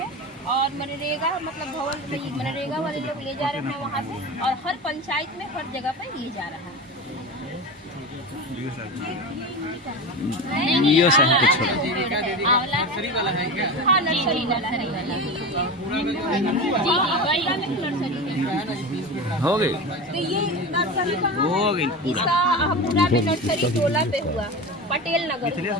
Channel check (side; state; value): both; normal; correlation 0.26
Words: और मनरेगा मतलब भवन मनरेगा वाले लोग ले जा रहे हैं वहाँ से, और हर पंचायत में हर जगह पे ये जा रहा है। यो सब कुछ छोड़ा। नर्सरी वाला है क्या? हाँ नर्सरी वाला है। हो गई तो ये नर्सरी हो गई पूरा। इसका पूरा में नर्सरी 12 पे हुआ, पटेल नगर।